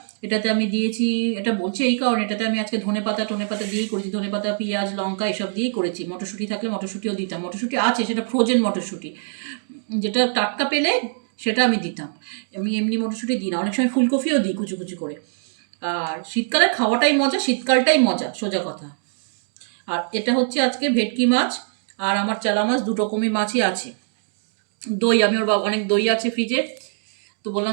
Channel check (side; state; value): left; silent; digital silence